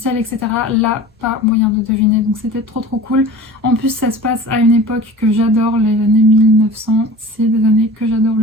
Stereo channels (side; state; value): both; normal; correlation 0.39